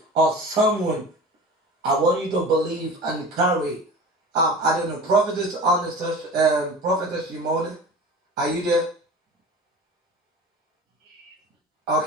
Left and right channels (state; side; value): normal; both; correlation 0.36